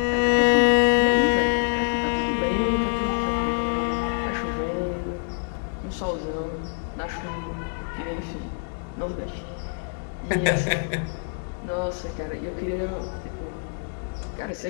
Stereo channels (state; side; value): silent; right; digital silence